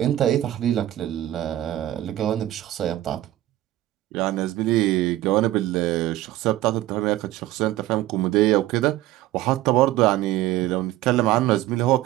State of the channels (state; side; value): quieter; left; 14.9 dB